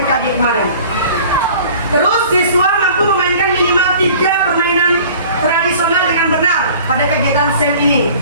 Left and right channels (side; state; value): both; inverted; correlation -0.46